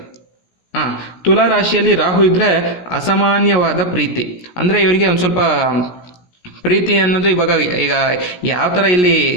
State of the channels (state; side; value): late; right; 17 ms